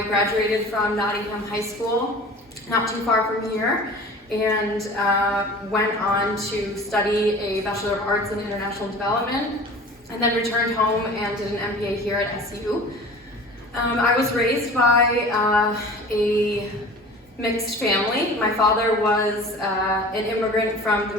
graduated from Nottingham High School, not too far from here, and went on to study a Bachelor of Arts in International Development, and then returned home and did an MBA here at SU. I was raised by a mixed family. My father was an immigrant from the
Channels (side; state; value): both; normal; correlation 0.41